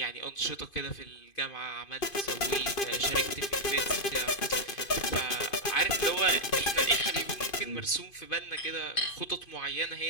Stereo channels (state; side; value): late; right; 2.5 ms